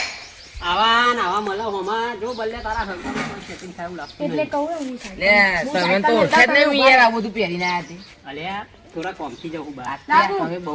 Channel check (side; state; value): both; identical; correlation 1.00